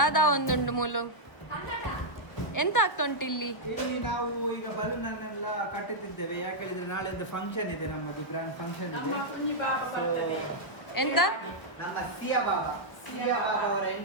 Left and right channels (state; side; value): late; right; 1.0 ms